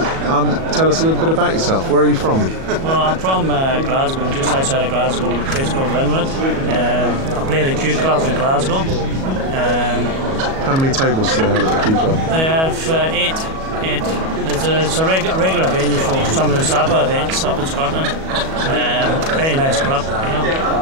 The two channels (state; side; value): late; left; 37 ms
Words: Tell us a little bit about yourself. Where are you from? Well, I'm from Glasgow, just outside of Glasgow, a place called Linwood. I play at the Q Club in Glasgow. How many tables do they have at the Q Club? They have eight. It's a regular venue for some of the SAPA events up in Scotland. Very nice club.